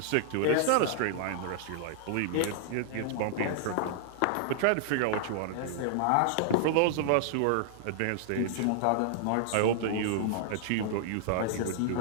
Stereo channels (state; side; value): different; both; correlation -0.01